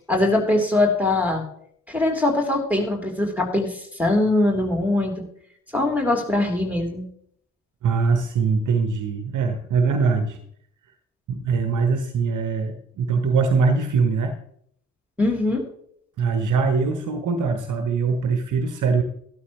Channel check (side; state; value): both; normal; correlation 0.65